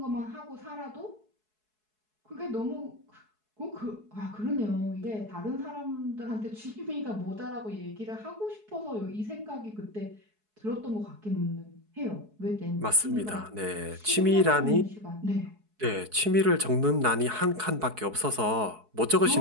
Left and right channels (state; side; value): late; left; 4.7 ms